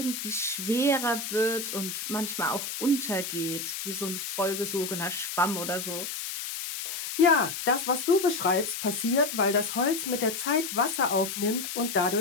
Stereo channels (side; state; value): left; noise; hiss, 5 dB below the sound